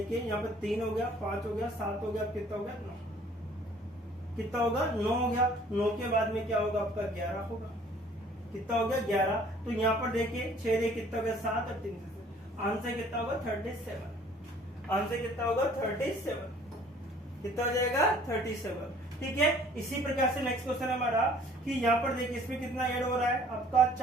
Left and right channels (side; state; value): both; normal; correlation 0.55